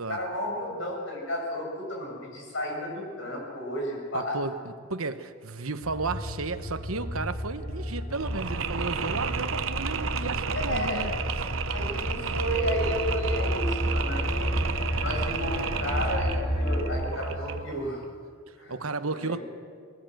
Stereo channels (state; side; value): normal; both; correlation 0.26